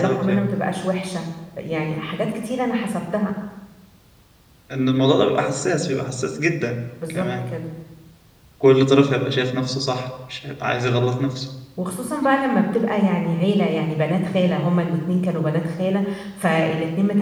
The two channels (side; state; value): both; identical; correlation 1.00